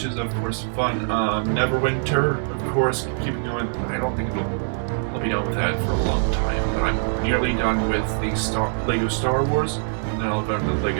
is of course fun. Neverwinter, of course, keeping going. I don't think I'll be done with that for a long time, but I'm nearly done with the Lego Star Wars, and then I'll go to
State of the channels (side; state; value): left; silent; digital silence